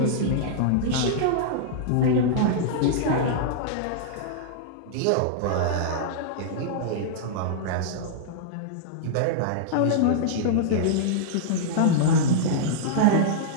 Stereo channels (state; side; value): different; both; correlation -0.02